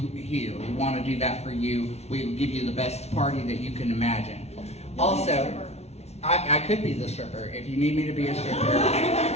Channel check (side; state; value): right; late; 0.31 ms